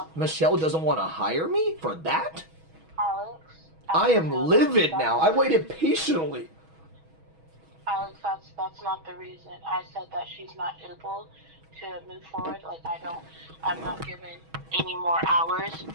Michelle doesn't want to hire me for that? Alex, I Alex, am no, livid now. I waited patiently. Alex, that's not the reason. I said that she's not able to move forward. I'm not given any more hours.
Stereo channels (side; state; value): left; late; 6.2 ms